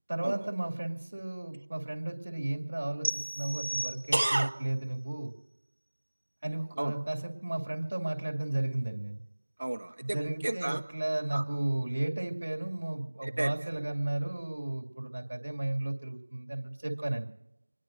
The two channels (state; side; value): inverted; both; correlation -1.00